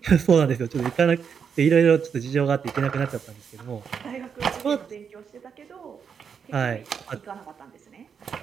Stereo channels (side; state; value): left; quieter; 6.8 dB